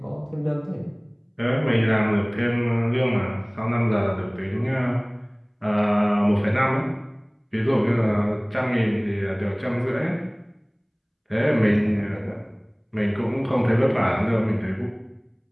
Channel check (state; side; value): identical; both; correlation 1.00